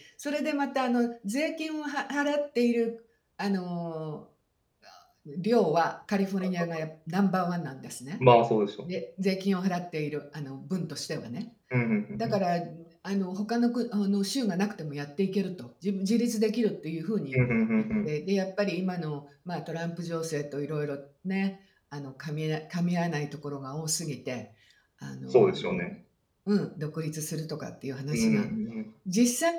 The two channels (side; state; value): both; identical; correlation 1.00